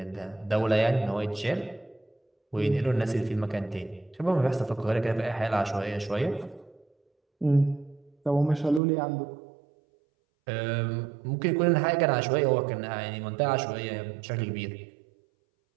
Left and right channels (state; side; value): drops out; left; at 8.8 s